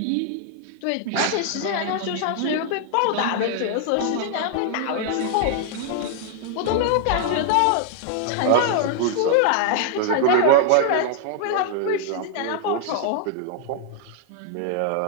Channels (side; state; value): both; different; correlation 0.00